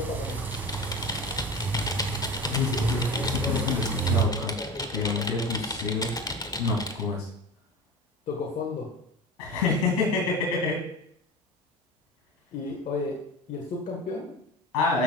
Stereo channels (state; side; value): normal; both; correlation 0.31